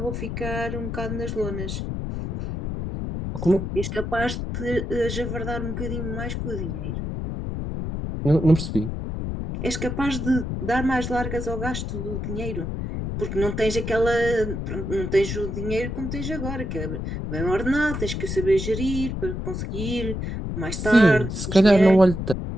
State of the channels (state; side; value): noise; left; rumble, 4 dB below the sound